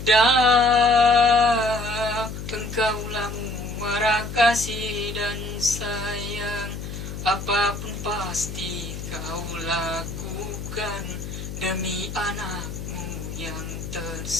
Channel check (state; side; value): noise; left; hum, 8 dB below the sound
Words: Bunda, engkaulah muara kasih dan sayang. Apapun pasti kau lakukan demi anakmu yang